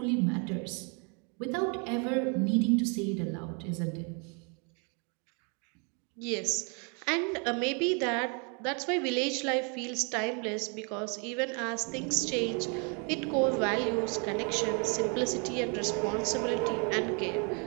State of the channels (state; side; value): quieter; left; 36.1 dB